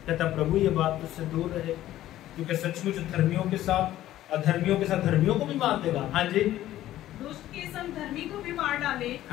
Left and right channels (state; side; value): quieter; right; 13.8 dB